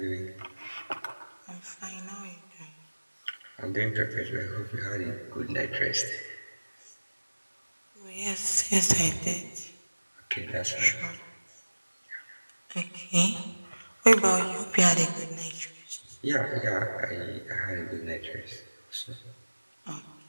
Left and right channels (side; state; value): both; inverted; correlation -1.00